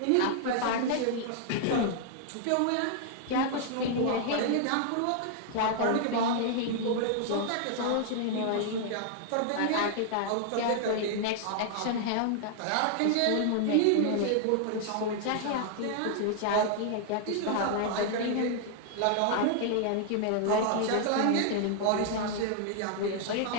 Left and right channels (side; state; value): both; different; correlation 0.00